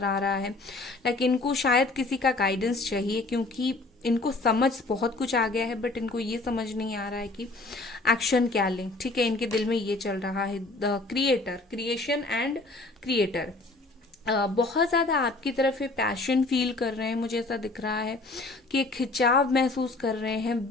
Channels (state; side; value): quieter; right; 3.2 dB